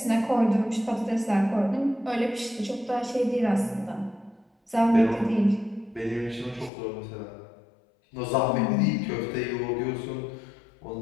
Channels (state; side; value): drops out; right; at 6.7 s